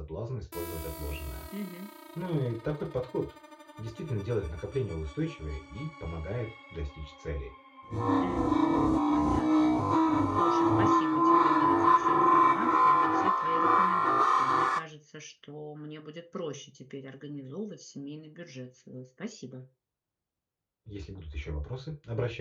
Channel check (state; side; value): identical; both; correlation 1.00